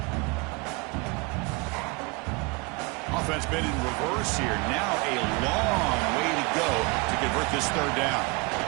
Offense been in reverse here. Now a long way to go to convert this 3rd down.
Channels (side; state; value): left; quieter; 27.8 dB